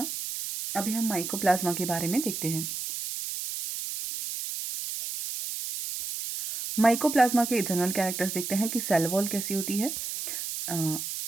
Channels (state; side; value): noise; right; hiss, 5 dB below the sound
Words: अभी हम माइकोप्लाज्मा के बारे में देखते हैं। माइकोप्लाज्मा के जनरल कैरेक्टर्स देखते हैं कि सेल वॉल कैसी होती है,